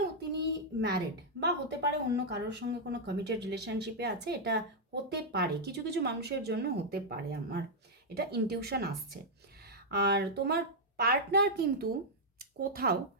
তিনি ম্যারিড, বা হতে পারে অন্য কারোর সঙ্গে কোনো কমিটেড রিলেশনশিপে আছে, এটা হতে পারে, কিছু কিছু মানুষের জন্য হতে পারে, আমার এটা ইনটিউশন আসছে। আর তোমার পার্টনার কিন্তু কোথাও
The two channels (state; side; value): normal; both; correlation -0.04